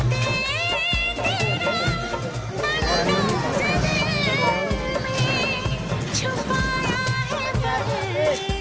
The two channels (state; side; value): identical; both; correlation 1.00